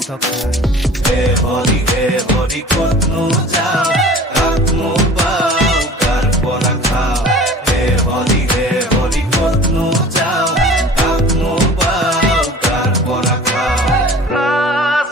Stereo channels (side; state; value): both; normal; correlation 0.43